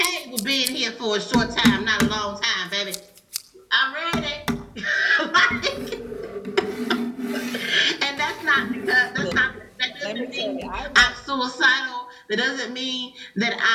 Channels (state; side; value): identical; both; correlation 1.00